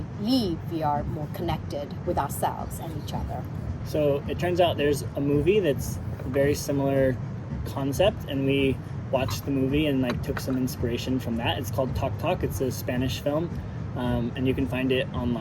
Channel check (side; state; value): both; identical; correlation 1.00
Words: leave we are more connected with ourselves and each other. So it turns out there's a movie that's a very similar concept, and we watched the movie and took some inspiration from that. It's called Talk Talk. It's a Spanish film, and you can find it